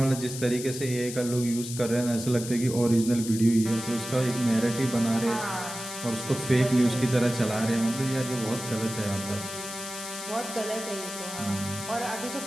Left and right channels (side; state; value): left; noise; hiss, 9 dB below the sound